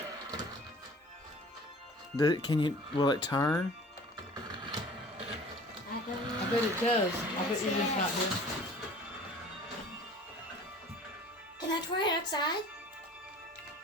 Will it turn? I bet it does. I bet you're just not here. Can I try it outside?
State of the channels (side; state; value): both; normal; correlation 0.46